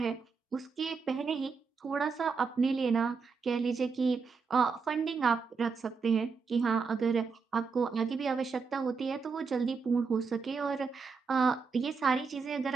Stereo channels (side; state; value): left; quieter; 5.1 dB